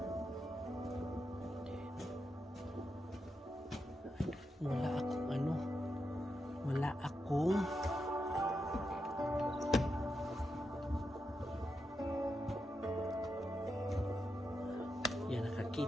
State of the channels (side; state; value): both; normal; correlation 0.86